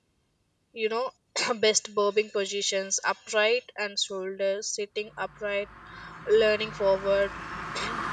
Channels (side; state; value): both; identical; correlation 1.00